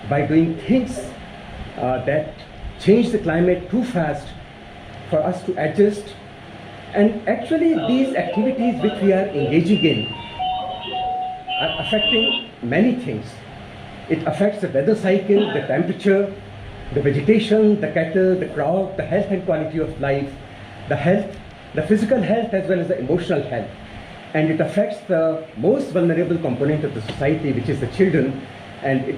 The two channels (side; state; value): both; identical; correlation 1.00